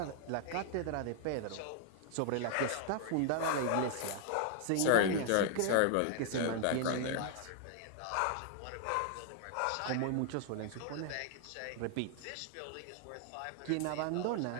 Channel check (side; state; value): both; different; correlation -0.01